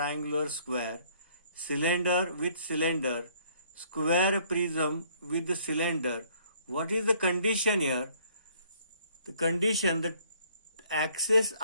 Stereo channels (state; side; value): inverted; both; correlation -0.62